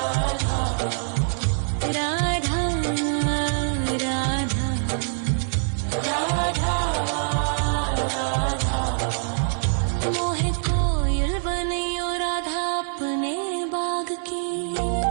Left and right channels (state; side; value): silent; left; digital silence